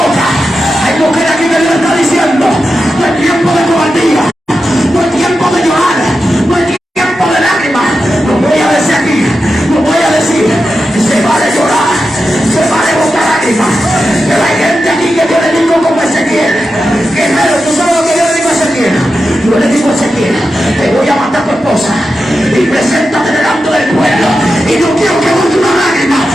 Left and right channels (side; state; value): both; normal; correlation 0.90